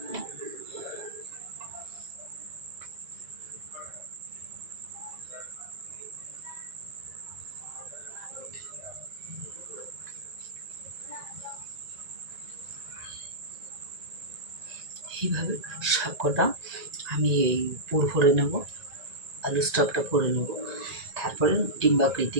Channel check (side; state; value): left; late; 1.9 ms